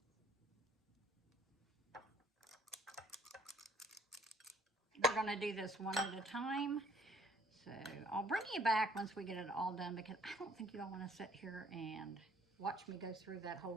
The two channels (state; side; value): normal; both; correlation 0.59